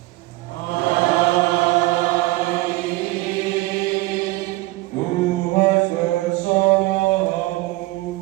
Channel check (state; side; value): quieter; left; 20.0 dB